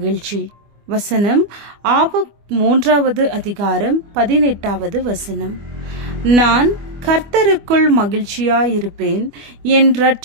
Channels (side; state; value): left; late; 25 ms